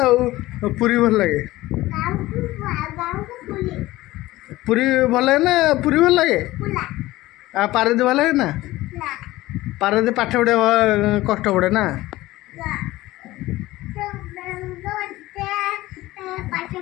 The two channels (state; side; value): quieter; right; 17.6 dB